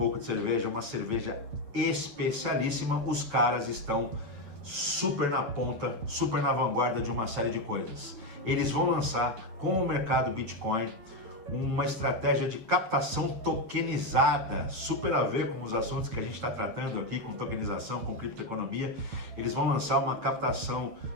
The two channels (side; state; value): left; late; 9.1 ms